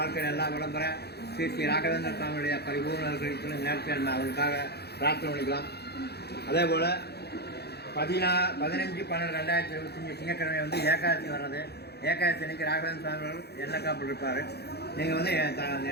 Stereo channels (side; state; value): right; late; 0.48 ms